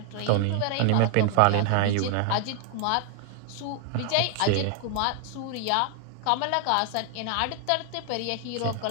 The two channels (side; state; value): both; different; correlation 0.00